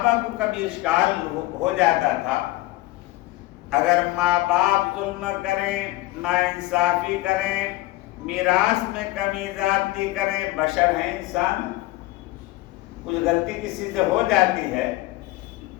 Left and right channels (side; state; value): right; quieter; 18.4 dB